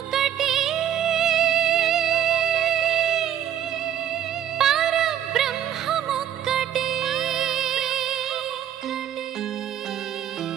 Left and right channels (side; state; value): left; quieter; 10.6 dB